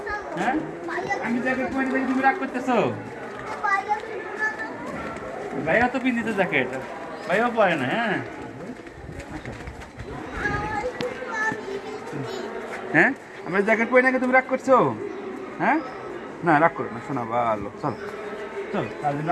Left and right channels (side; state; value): both; identical; correlation 1.00